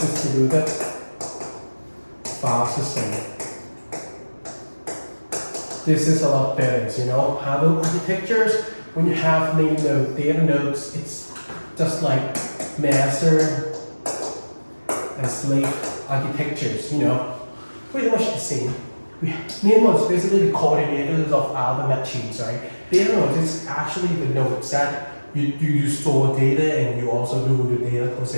file system. This is a lot better, you know. Handle architectures, when you have name node, data nodes, it's just like master and slave architectures, you know. Pretty much the same. Name nodes basically the coordinators of other machines, right? Data nodes is actually the nodes that you store data and you also do the data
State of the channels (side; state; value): both; inverted; correlation -1.00